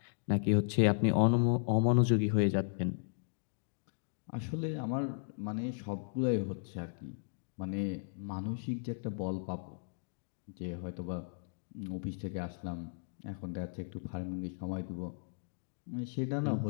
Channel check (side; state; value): right; silent; digital silence